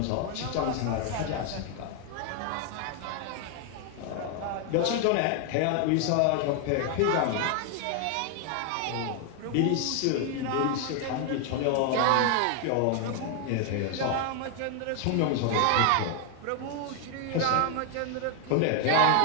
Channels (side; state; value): both; different; correlation 0.00